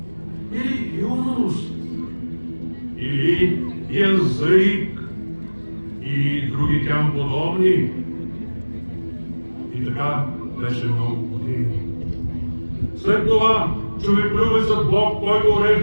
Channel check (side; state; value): both; inverted; correlation -1.00